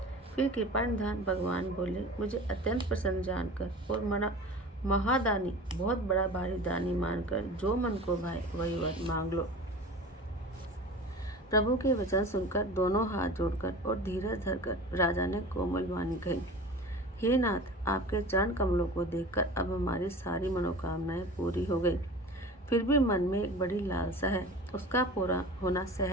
फिर कृपानिधान भगवान बोले, मुझे अत्यंत प्रसन्न जानकर और महादानी बहुत बड़ा भारी दानी मानकर जो मन को भाए वही वर मांग लो। प्रभु के वचन सुनकर दोनों हाथ जोड़कर और धीरज धरकर राजा ने कोमल वाणी कही, हे नाथ, आपके चरण कमलों को देखकर अब हमारी सारी मनोकामनाएं पूरी हो गई। फिर भी मन में एक बड़ी लालसा है, उसका पूरा होना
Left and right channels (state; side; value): normal; both; correlation 0.37